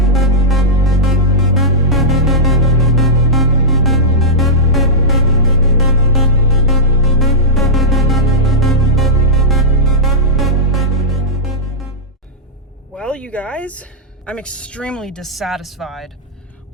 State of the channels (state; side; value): normal; both; correlation -0.09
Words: Well, you guys, I'm extremely dissatisfied